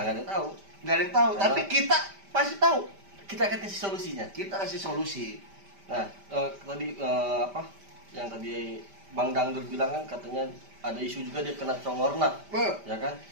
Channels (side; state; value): left; late; 5.1 ms